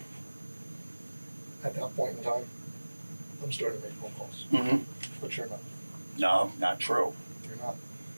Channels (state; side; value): inverted; both; correlation -1.00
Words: at that point in time, I'm starting to make phone calls. But you're not. No, not true. You're not.